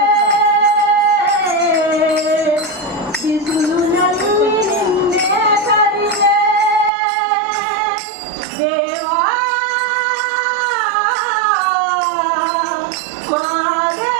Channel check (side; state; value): left; drops out; at 6.9 s